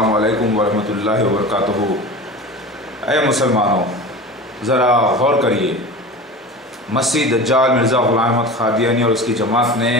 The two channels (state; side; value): normal; both; correlation 0.33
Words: अलैकुम वरहमतुल्लाहि वबरकातुहू। ऐ मुसलमानों, ज़रा गौर करिए। मसीह दज्जाल मिर्ज़ा ग़ुलाम अहमद क़ादियानी और उसकी जमात